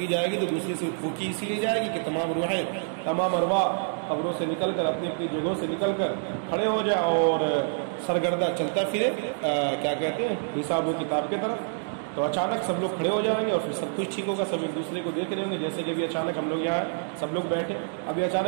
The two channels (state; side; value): silent; left; digital silence